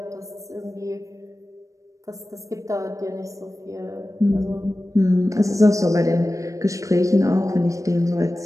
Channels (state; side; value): late; left; 0.16 ms